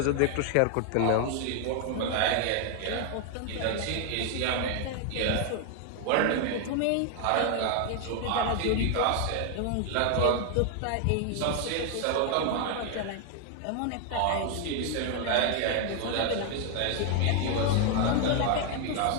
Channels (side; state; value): both; different; correlation 0.00